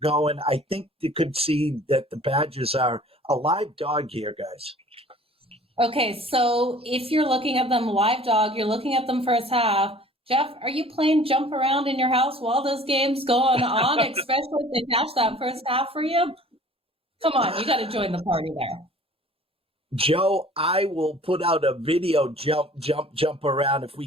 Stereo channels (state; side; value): normal; both; correlation 0.49